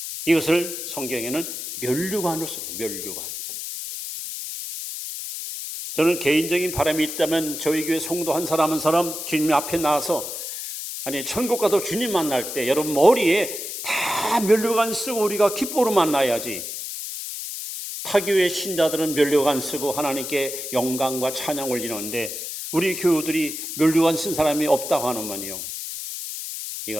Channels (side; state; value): left; noise; hiss, 7 dB below the sound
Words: 이것을 성경에는 면류관으로 씁니다. 면류관. 저는 개인적인 바람이 있다면 저희 교회 성도 한 사람 한 사람 주님 앞에 나와서 천국 가도 주님 만날 때 여러분 머리에 다 면류관 쓰고 우리가 기뻐로 만나야지. 타교회 신자들은 면류관 쓰고 하나님께 영광과 찬양 올리는데 우리 교우들이 면류관 쓴 사람이 없다고 하는만요.